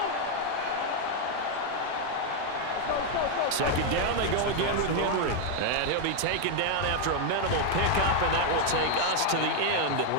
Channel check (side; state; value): both; different; correlation 0.00